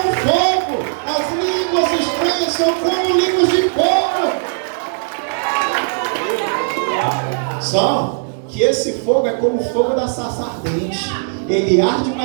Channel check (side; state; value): left; silent; 62 dB below the other